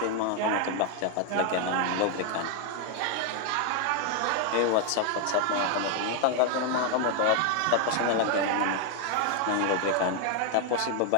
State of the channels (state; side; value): different; both; correlation 0.00